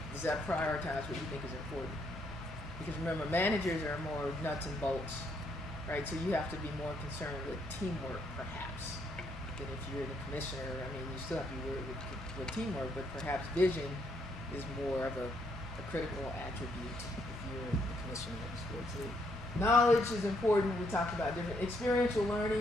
Does that prioritize what you think is important? Because remember, managers are more nuts and bolts, right? So you have to be more concerned with teamwork, perhaps, than if you're the commissioner. I mean, you still have to be worried with teamwork, but perhaps vision is more of a critical attribute if you're the commissioner of the sports league. Knowledge is important. We talked about different experiential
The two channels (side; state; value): both; normal; correlation 0.73